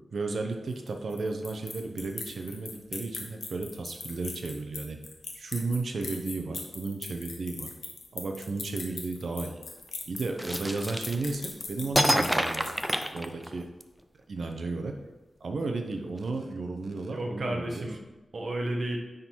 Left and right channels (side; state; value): both; normal; correlation 0.93